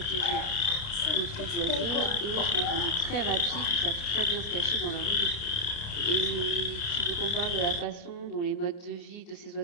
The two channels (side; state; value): right; late; 29 ms